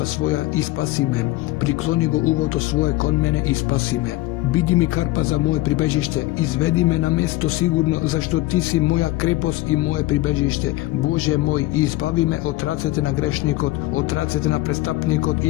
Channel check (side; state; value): right; quieter; 18.4 dB